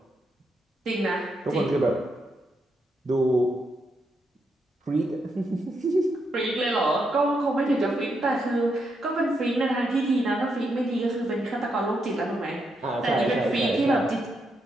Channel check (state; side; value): normal; both; correlation 0.81